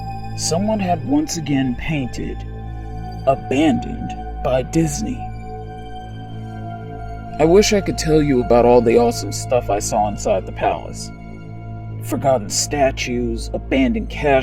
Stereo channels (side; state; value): both; identical; correlation 1.00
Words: someone had once again painted, "Abandoned by Disney." I wish I could tell you about all the awesome stuff I saw inside the palace. Forgotten statues, abandoned